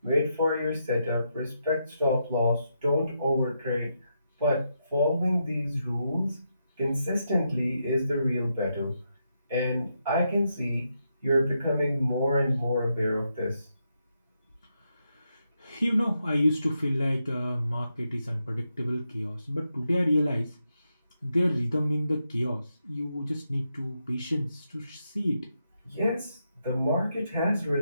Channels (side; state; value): both; inverted; correlation -0.83